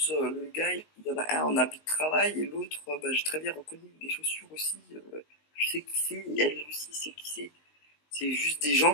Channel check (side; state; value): right; late; 19 ms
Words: le gars, il y en a un en habit de travail et l'autre, j'ai très bien reconnu les chaussures aussi. Je sais qui c'est, et elle aussi sait qui c'est. C'est juste des gens